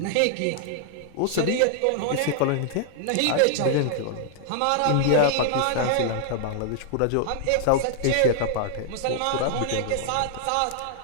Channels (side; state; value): both; different; correlation 0.00